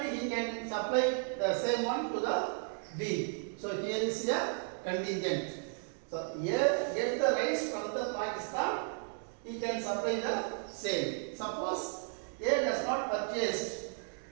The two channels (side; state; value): left; silent; 55 dB below the other